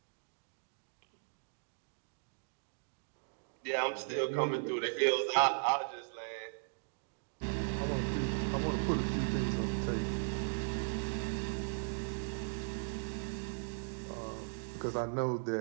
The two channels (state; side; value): silent; left; digital silence